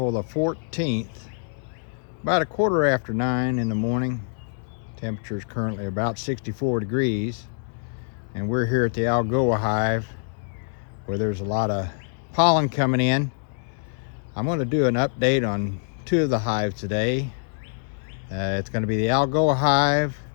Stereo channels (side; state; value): right; silent; digital silence